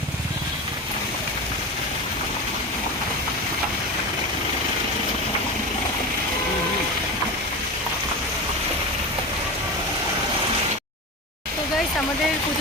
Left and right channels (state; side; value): normal; both; correlation 0.24